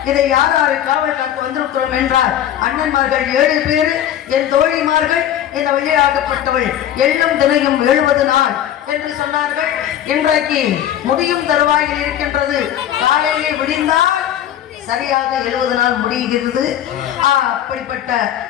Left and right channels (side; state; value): right; quieter; 11.0 dB